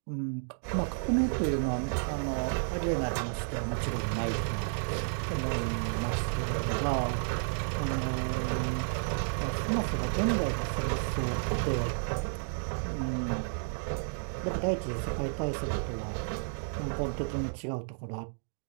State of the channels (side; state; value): left; silent; digital silence